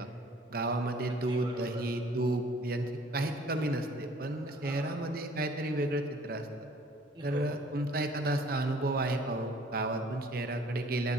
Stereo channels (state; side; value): normal; both; correlation 0.55